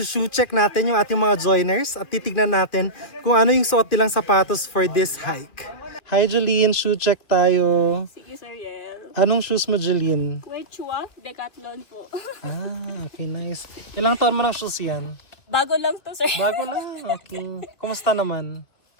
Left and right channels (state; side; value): late; right; 2.5 ms